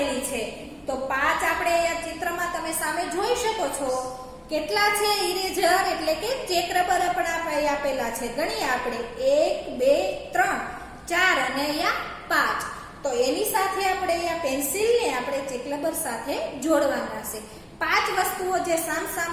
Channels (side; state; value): both; identical; correlation 1.00